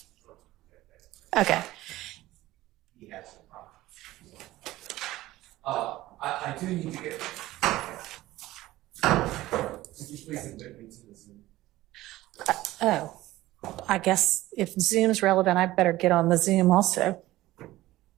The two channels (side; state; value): left; quieter; 16.7 dB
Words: Okay. he has some problems. I do need to get. Could you please admit me to the Zoom? Oh, I guess if Zoom's relevant, I better get on the Zoom also.